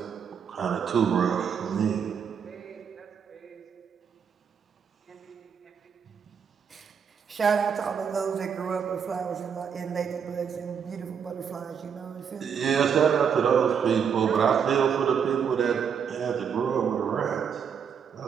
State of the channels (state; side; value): quieter; left; 7.2 dB